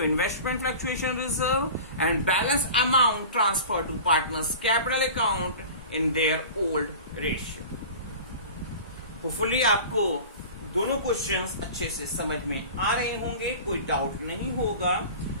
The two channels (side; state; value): both; inverted; correlation -0.37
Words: investment fluctuation reserve and balance amount transfer to partners capital account in their old ratio. Hopefully आपको दोनों क्वेश्चंस अच्छे से समझ में आ रहे होंगे, कोई डाउट नहीं होगा।